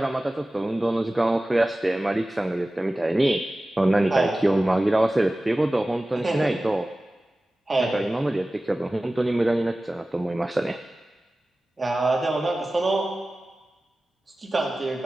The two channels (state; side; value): normal; both; correlation 0.97